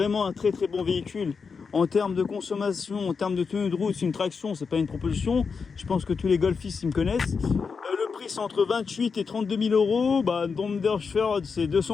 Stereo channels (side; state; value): right; quieter; 5.4 dB